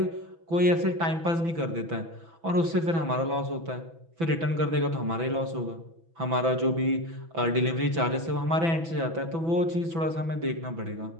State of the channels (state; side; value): late; left; 6.0 ms